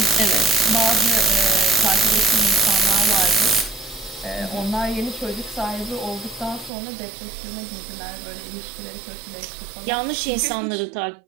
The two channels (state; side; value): drops out; left; at 6.7 s